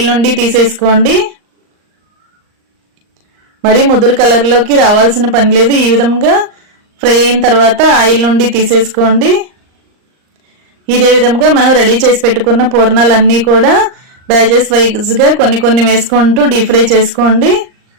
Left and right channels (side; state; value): left; late; 39 ms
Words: నుండి తీసేసుకోండి. మరి ముదురు కలర్లోకి రావాల్సిన పని లేదు. ఈ విధంగా ఫ్రై అయిన తర్వాత ఆయిల్ నుండి తీసేసుకోండి. ఇదే విధంగా మనం రెడీ చేసి పెట్టుకున్న పూర్ణాలన్నీ కూడా బ్యాచెస్ వైజ్గా కొన్ని కొన్ని వేసుకుంటూ డీప్ ఫ్రై చేసుకోండి.